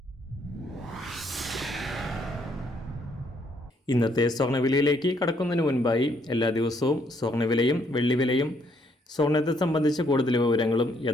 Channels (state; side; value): normal; both; correlation 0.70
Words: ഇന്നത്തെ സ്വർണ്ണവിലയിലേക്ക് കടക്കുന്നതിന് മുൻപായി എല്ലാ ദിവസവും സ്വർണ്ണവിലയും വെള്ളിവിലയും സ്വർണ്ണത്തെ സംബന്ധിച്ച കൂടുതൽ വിവരങ്ങളും